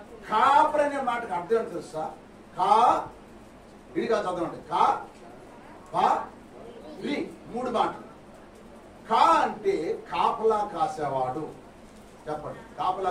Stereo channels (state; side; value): identical; both; correlation 1.00